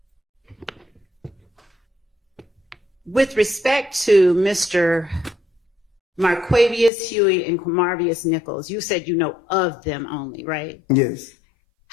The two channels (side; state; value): right; drops out; at 6.9 s